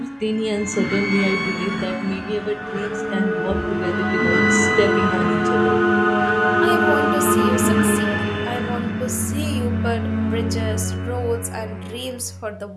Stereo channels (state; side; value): identical; both; correlation 1.00